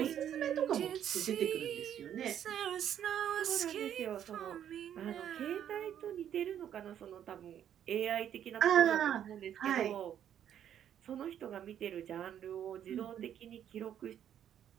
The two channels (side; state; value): left; quieter; 9.8 dB